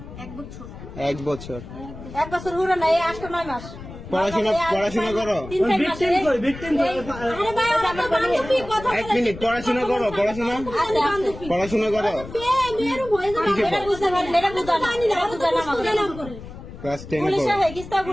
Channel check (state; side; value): noise; left; rumble, 13 dB below the sound